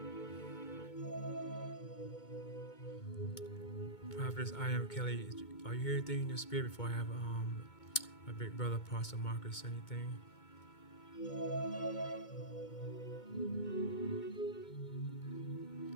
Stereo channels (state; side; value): late; right; 2.2 ms